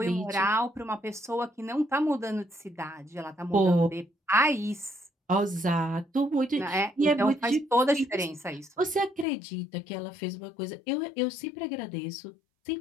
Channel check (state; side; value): drops out; right; at 9.2 s